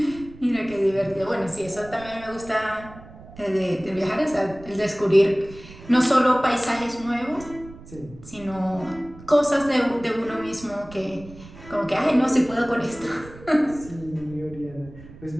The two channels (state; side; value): noise; right; rumble, 18 dB below the sound